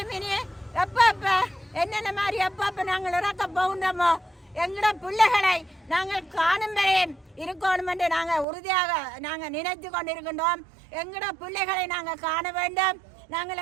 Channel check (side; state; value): left; drops out; at 8.5 s